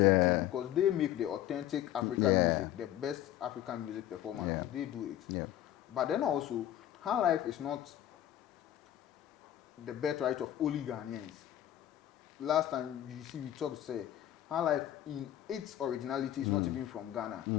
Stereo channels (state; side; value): quieter; right; 12.3 dB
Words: because they make the authentic African music, the best African music performance. They do it. But then also, high life is not the birthright of only Ghanaians. Last time you see we talked, high life in its originality is not even from Ghana.